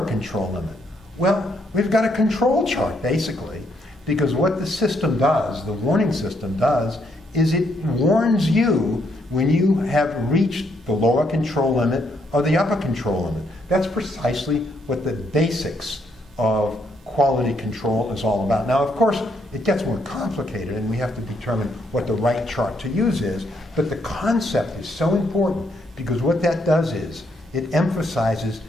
control limit. Well, we've got a control chart, basically, because what the system does, the warning system does, is it warns you when you have reached the lower control limit or the upper control limit. That's precisely what the basics of quality control is all about. Now, of course, it gets more complicated, and we have to determine what the right chart to use is, but the concept is so important, because what that does is it emphasizes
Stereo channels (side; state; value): both; normal; correlation 0.74